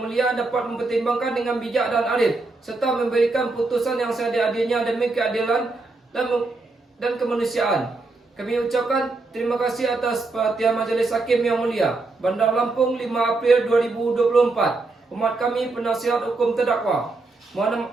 dapat mempertimbangkan dengan bijak dan adil serta memberikan putusan yang seadil-adilnya demi keadilan dan kemanusiaan. Kami ucapkan terima kasih atas perhatian Majelis Hakim yang Mulia. Bandar Lampung, 5 April 2024. Hormat kami penasihat hukum terdakwa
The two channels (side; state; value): left; quieter; 3.5 dB